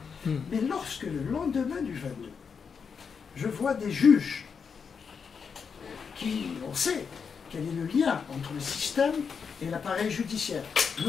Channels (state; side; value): quieter; right; 6.1 dB